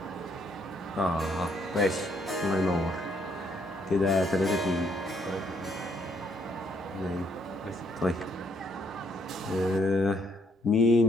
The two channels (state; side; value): normal; both; correlation 0.70